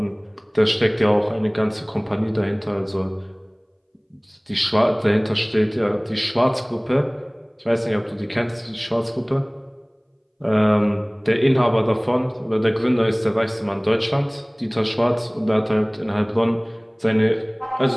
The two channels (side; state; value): both; identical; correlation 1.00